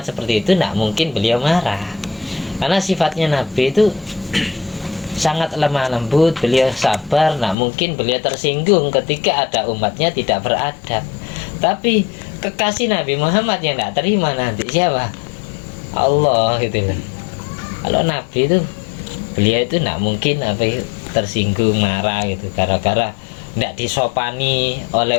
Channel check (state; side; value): drops out; right; at 7.6 s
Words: seperti itu tidak mungkin beliau marah, karena sifatnya Nabi itu sangat lemah lembut, beliau sabar, tidak mungkin beliau tersinggung ketika ada umatnya tidak beradab. Tapi kekasih Nabi Muhammad yang tidak terima nanti siapa? Allah gitu loh. Kalau Nabi itu, beliau itu tidak mungkin tersinggung, marah gitu gara-gara tidak disopani oleh